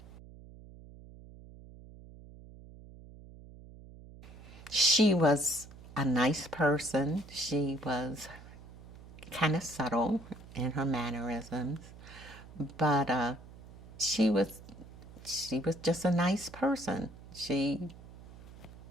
She was a nice person. She was kind of subtle in her mannerisms, but she was just a nice person. She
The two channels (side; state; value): right; noise; hum, 18 dB below the sound